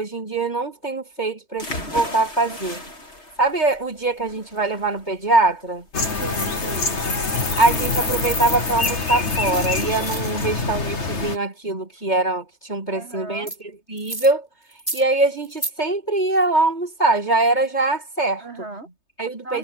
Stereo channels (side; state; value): right; late; 3.3 ms